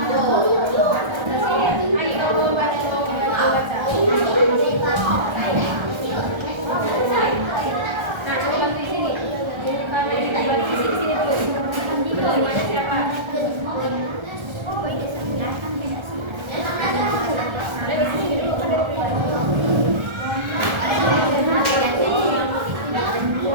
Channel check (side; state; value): left; late; 1.3 ms